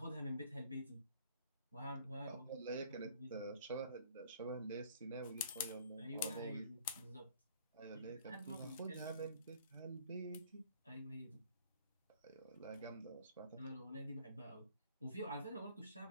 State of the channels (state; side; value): inverted; both; correlation -0.56